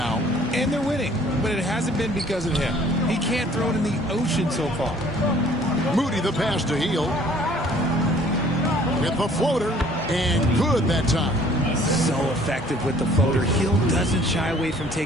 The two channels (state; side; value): normal; both; correlation 0.56